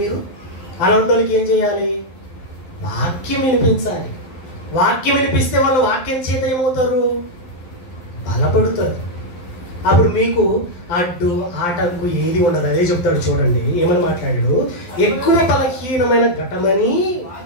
చేయాలి? వాక్యం వినిపించాలి. వాక్యం వినిపిస్తే వాళ్ళు వాక్యం చేత ఏమవుతారు? బలపడుతారు. అప్పుడు మీకు అడ్డు ఆటంకు ఏది ఉండదు. అదే చెప్తాడు చూడండి, ఏమని మాట్లాడాడు? ఎక్కువ బలహీనమైన ఘటమని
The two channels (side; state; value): right; late; 11 ms